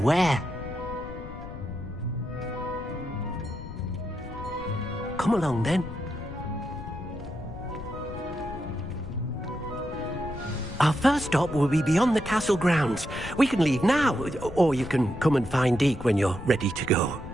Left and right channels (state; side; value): noise; left; rumble, 11 dB below the sound